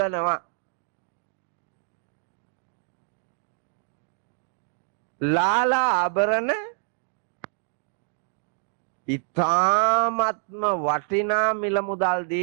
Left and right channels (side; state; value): left; silent; digital silence